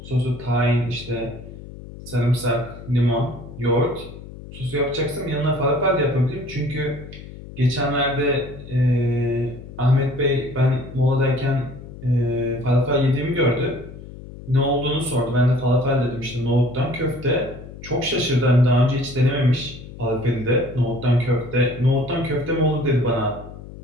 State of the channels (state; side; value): noise; left; hum, 15 dB below the sound